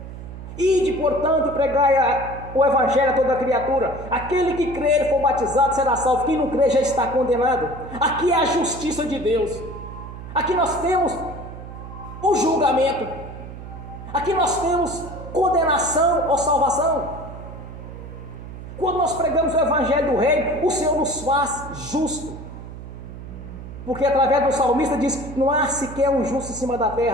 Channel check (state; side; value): noise; right; hum, 12 dB below the sound